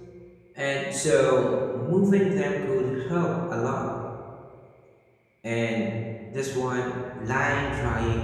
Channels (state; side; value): identical; both; correlation 1.00